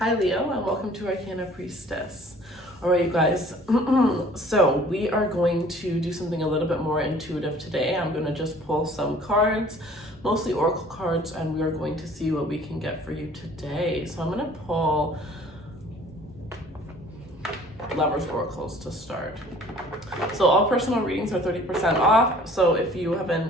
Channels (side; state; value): both; normal; correlation 0.52